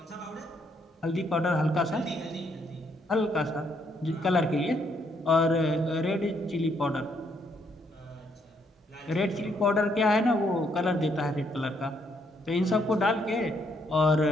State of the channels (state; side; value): normal; both; correlation 0.72